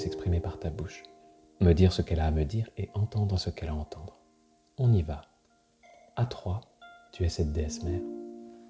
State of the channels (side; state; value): both; identical; correlation 1.00